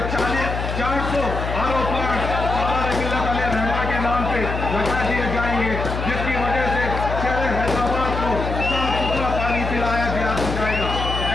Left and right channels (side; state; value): left; noise; hum, 4 dB below the sound